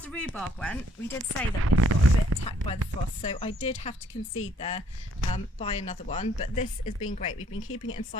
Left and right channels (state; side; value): normal; both; correlation 0.65